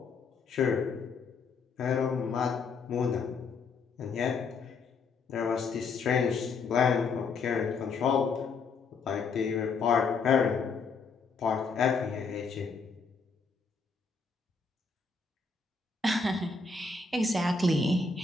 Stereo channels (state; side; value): quieter; right; 4.7 dB